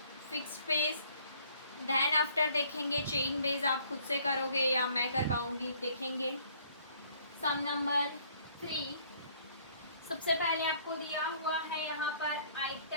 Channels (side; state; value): both; inverted; correlation -0.60